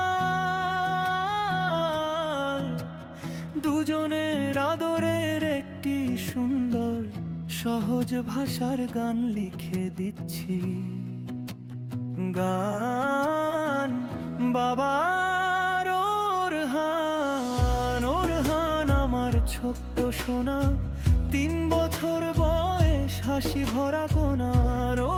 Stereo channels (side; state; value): both; identical; correlation 1.00